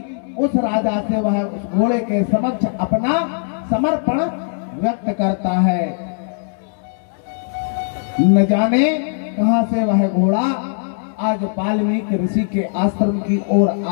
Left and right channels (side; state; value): right; silent; digital silence